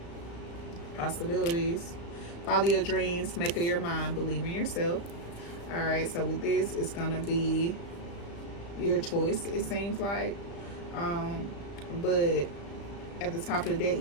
Possibilities. Follow your dreams. Make up your mind. Believe in yourself. All right, so with this, it's going to be your choice, it seems like. But at the top of the deck,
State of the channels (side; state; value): right; late; 35 ms